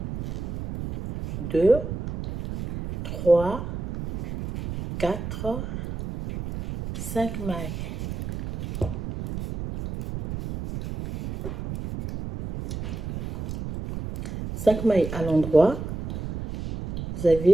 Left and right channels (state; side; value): noise; right; rumble, 7 dB below the sound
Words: 2, 3, 4, 5 mailles. Cinq mailles à l'endroit. Vous